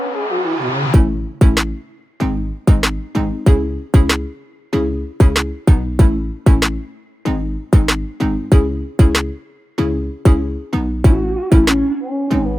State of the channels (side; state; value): both; normal; correlation 0.96